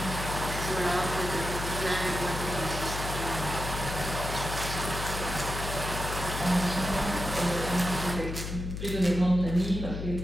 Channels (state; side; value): noise; left; hum, 5 dB below the sound